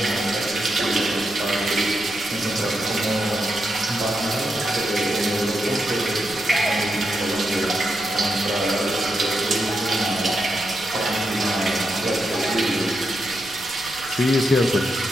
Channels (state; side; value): noise; right; rumble, 21 dB below the sound